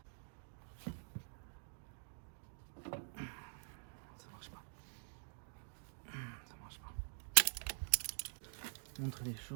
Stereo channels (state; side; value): silent; left; digital silence